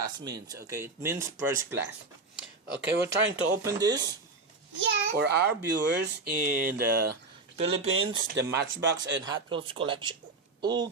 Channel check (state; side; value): quieter; left; 3.5 dB